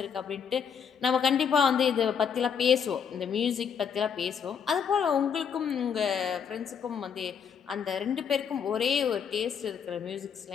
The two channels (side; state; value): right; quieter; 7.2 dB